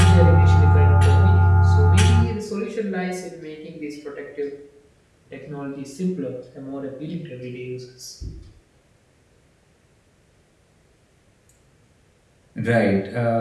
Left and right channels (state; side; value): identical; both; correlation 1.00